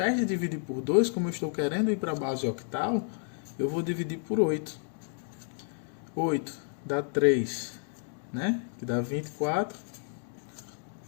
de dividir por 2, como eu estou querendo ir para a base octal, eu vou dividir por 8. 8 dá 3, né? Que dá 24,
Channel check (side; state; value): right; silent; 57 dB below the other